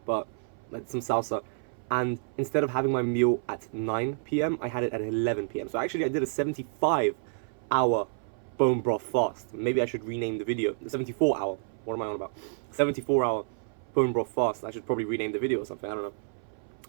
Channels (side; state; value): left; silent; 57 dB below the other